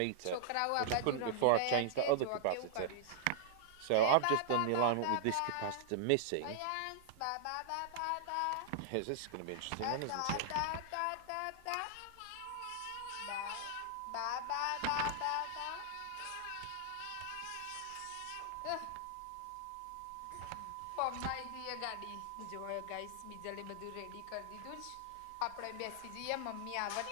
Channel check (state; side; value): different; both; correlation -0.01